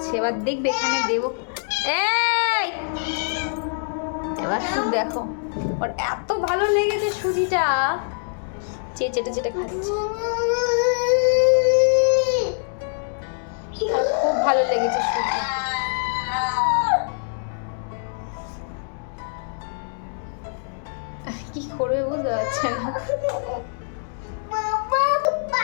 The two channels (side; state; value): right; silent; digital silence